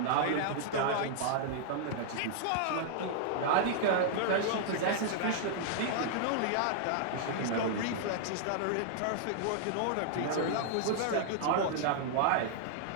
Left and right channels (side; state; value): both; different; correlation -0.01